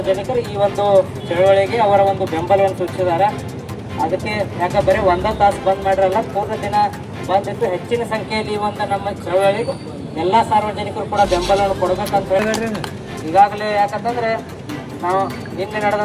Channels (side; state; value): both; identical; correlation 1.00